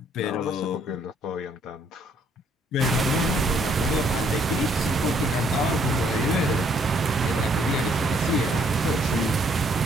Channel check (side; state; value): both; normal; correlation 0.66